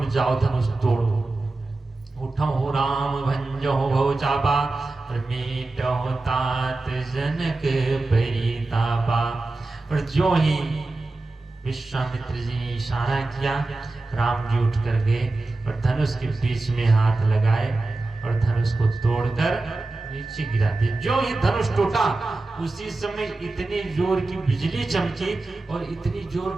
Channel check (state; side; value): quieter; left; 3.2 dB